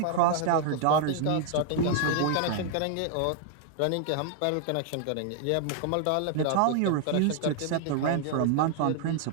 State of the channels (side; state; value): both; different; correlation 0.00